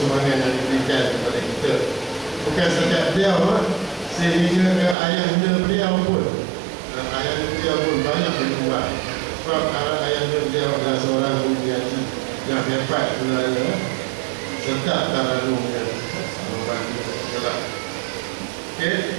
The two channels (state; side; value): drops out; left; at 5.0 s